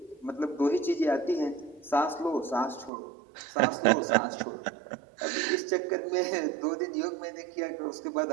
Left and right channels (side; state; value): left; drops out; at 2.9 s